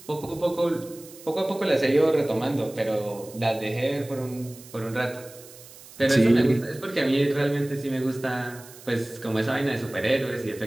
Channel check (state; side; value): noise; right; hiss, 19 dB below the sound